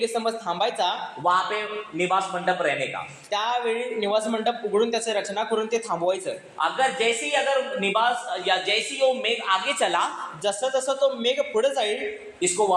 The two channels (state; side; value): identical; both; correlation 1.00